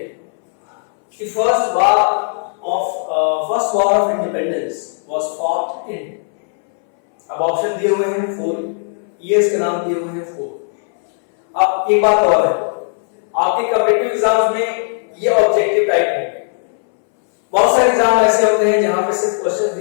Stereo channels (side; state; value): right; silent; 63 dB below the other